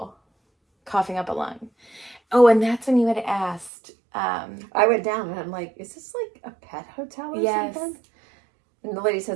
coughing up a lung. Oh, and that's when you had asked. I went down and I'm like, is this like a pet hotel or yes. something? And the lady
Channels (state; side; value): drops out; left; at 3.7 s